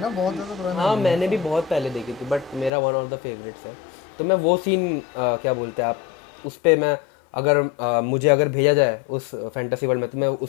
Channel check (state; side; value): drops out; right; at 2.7 s